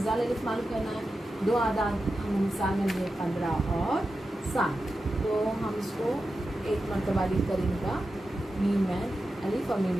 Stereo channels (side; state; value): both; normal; correlation 0.91